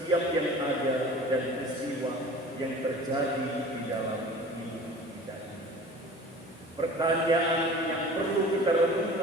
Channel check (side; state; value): both; normal; correlation 0.42